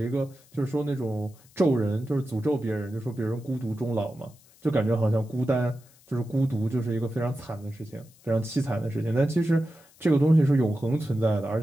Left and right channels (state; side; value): noise; left; hiss, 28 dB below the sound